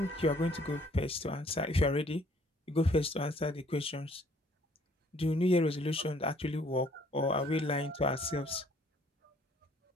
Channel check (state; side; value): normal; both; correlation 0.61